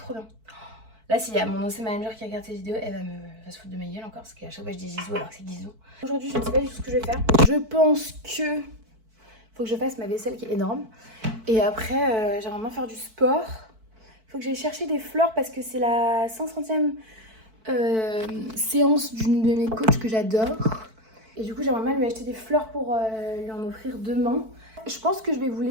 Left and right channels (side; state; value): left; late; 4.5 ms